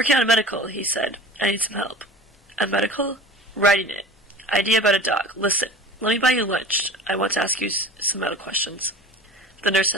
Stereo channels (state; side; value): normal; both; correlation 0.38